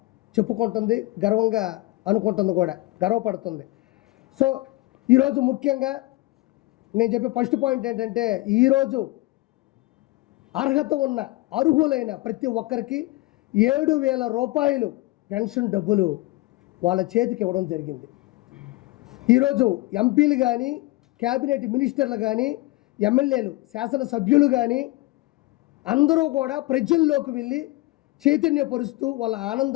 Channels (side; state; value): right; quieter; 20.2 dB